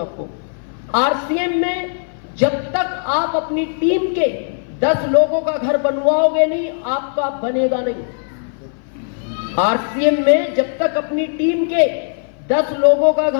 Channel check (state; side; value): silent; right; 59 dB below the other